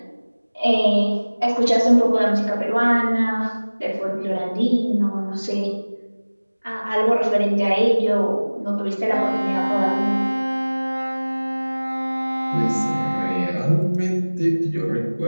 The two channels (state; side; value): inverted; both; correlation -1.00